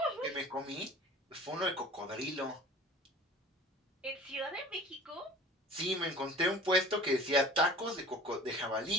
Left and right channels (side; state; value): both; normal; correlation 0.44